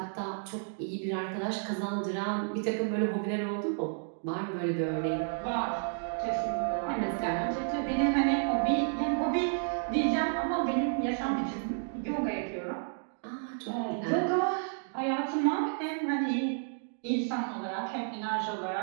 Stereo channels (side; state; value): left; silent; digital silence